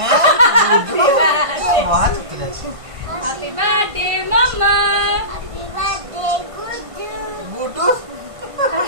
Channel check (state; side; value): late; left; 1.5 ms